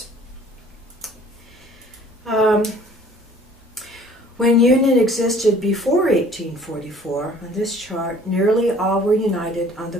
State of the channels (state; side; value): normal; both; correlation 0.53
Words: When union existed before 1844, on this chart, nearly all were united on the